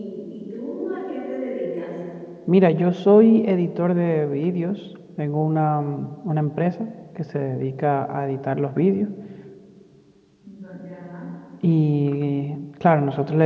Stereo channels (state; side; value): identical; both; correlation 1.00